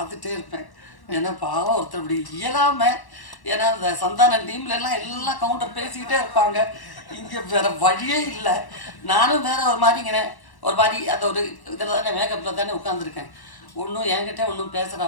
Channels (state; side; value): late; right; 1.1 ms